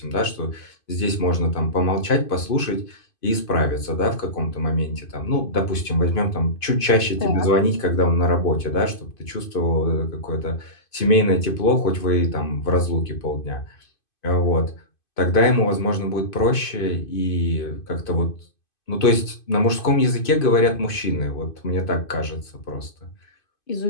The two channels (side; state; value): right; late; 2.5 ms